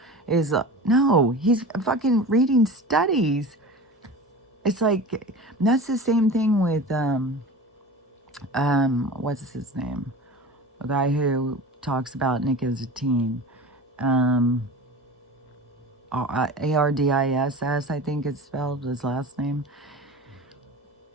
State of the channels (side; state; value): both; normal; correlation 0.34